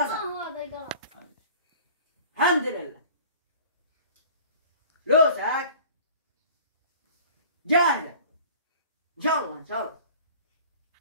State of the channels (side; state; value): both; inverted; correlation -0.45